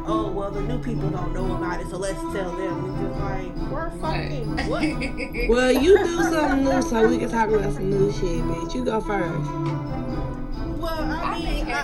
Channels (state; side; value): identical; both; correlation 1.00